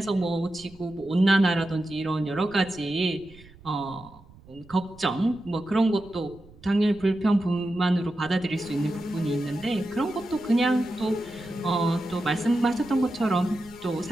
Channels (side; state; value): right; noise; rumble, 23 dB below the sound